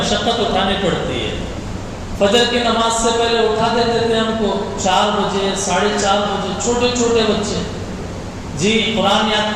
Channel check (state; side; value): identical; both; correlation 1.00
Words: اٹھانی پڑتی ہے۔ فجر کی نماز سے پہلے اٹھا دیتے تھے ہم کو 4 بجے 4:30 بجے، چھوٹے چھوٹے بچے، جی قرآن یاد